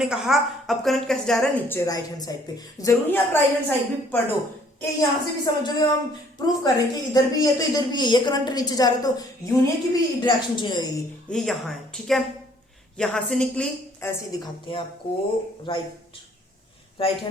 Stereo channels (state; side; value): normal; both; correlation 0.61